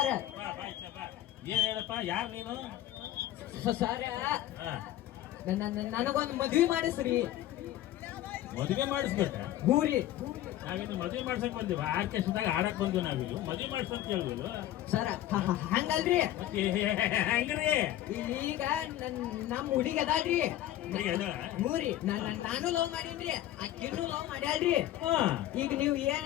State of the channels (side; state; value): right; quieter; 13.4 dB